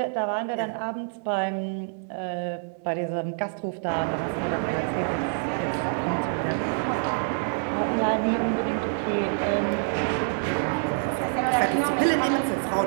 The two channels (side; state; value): left; silent; 61 dB below the other